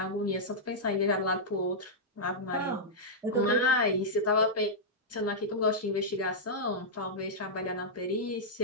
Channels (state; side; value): normal; both; correlation -0.09